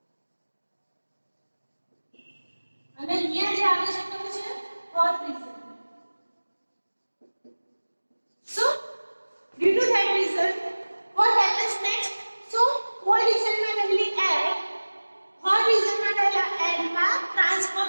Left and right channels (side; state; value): both; inverted; correlation -1.00